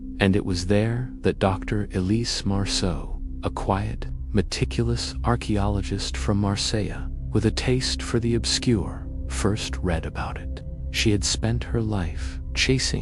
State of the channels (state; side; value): identical; both; correlation 1.00